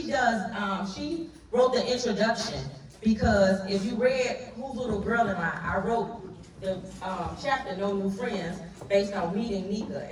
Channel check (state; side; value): identical; both; correlation 1.00